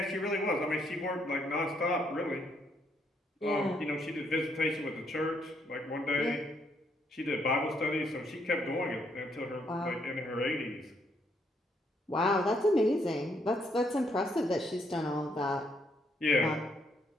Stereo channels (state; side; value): normal; both; correlation 0.72